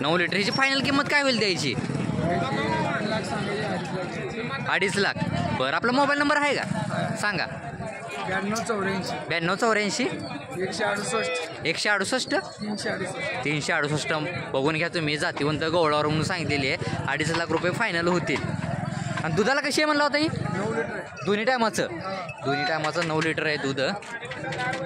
9 लिटर. हिची फायनल किंमत काय होईल द्यायची? 2.5 लाख. बरं, आपला मोबाईल नंबर आहे का? सांगा. 9284 168 368. बघून घ्या तुम्ही. जातीवंत गवळावर म्हणून सांगितलेली आहे. 2.5 लाख रुपये फायनल होतील. आणि दुधाला कशी आहे म्हणला होता ही? 9 लिटर. दोन्ही टायमाचं 9 लिटर आहे दूध.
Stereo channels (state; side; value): identical; both; correlation 1.00